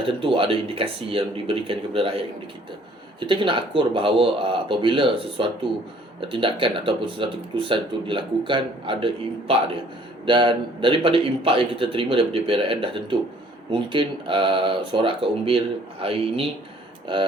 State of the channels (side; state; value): both; normal; correlation 0.58